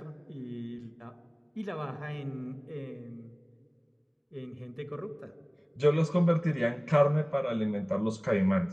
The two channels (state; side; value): identical; both; correlation 1.00